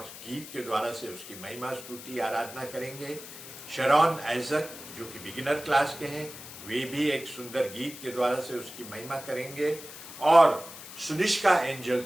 गीत के द्वारा से उसकी महिमा स्तुति आराधना करेंगे। शरॉन आइजक जो कि बिगिनर क्लास के हैं, वे भी एक सुंदर गीत के द्वारा से उसकी महिमा करेंगे। और सुनिष्का एंजल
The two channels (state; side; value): noise; left; hiss, 14 dB below the sound